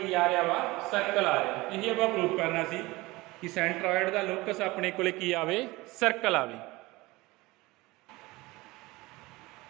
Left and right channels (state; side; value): quieter; left; 21.3 dB